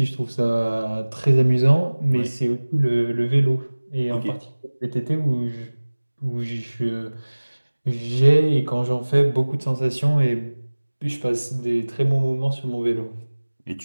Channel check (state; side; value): inverted; both; correlation -1.00